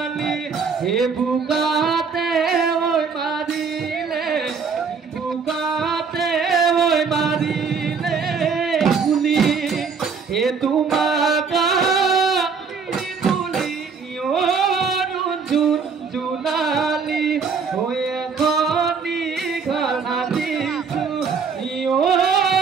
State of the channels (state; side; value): quieter; left; 5.5 dB